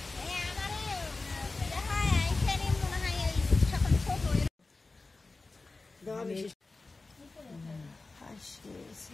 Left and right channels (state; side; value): quieter; right; 3.6 dB